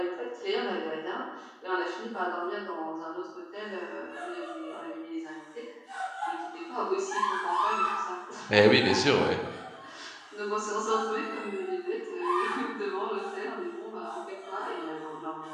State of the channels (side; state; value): both; identical; correlation 1.00